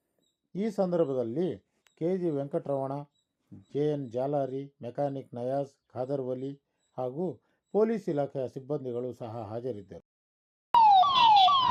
ಈ ಸಂದರ್ಭದಲ್ಲಿ KG Venkataramana, JN Jalari, mechanic Nayaz, Khader Vali ಹಾಗೂ ಪೊಲೀಸ್ ಇಲಾಖೆಯ ಸಿಬ್ಬಂದಿಗಳು ಸಹ ಹಾಜರಿದ್ದರು.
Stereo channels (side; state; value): both; identical; correlation 1.00